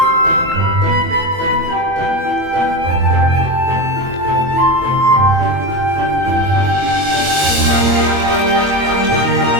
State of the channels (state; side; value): late; left; 22 ms